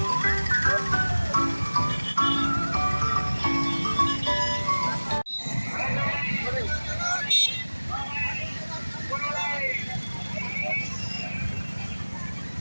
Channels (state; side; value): inverted; both; correlation -1.00